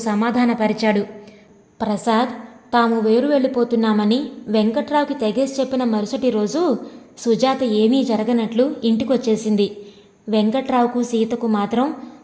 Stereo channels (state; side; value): identical; both; correlation 1.00